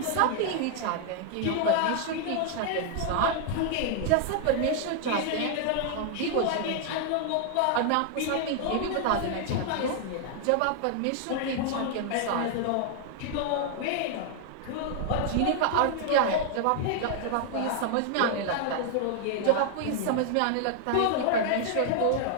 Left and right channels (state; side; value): different; both; correlation 0.00